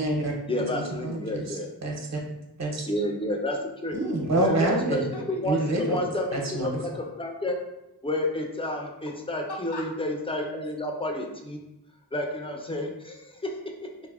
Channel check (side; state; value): both; normal; correlation 0.24